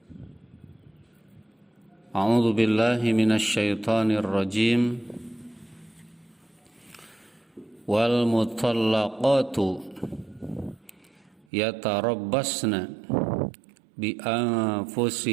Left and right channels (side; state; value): left; drops out; at 11.5 s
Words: A'udzu billahi minasy syaithanir rajim. Wal mutallaqatu yatarabbasna bi